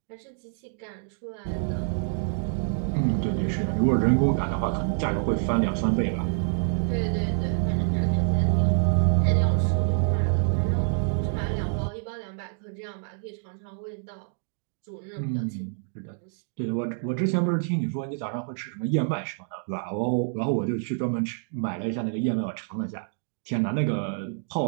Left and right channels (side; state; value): left; silent; digital silence